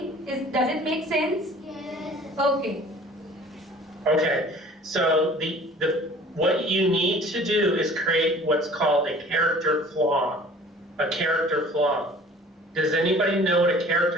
does it make sense? Yes. Okay. Okay, so what you need to do is create what's called a character flaw. A character flaw. Does anybody know what a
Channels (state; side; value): normal; both; correlation 0.48